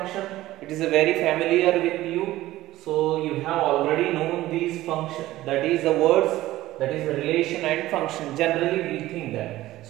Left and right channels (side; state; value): left; quieter; 16.0 dB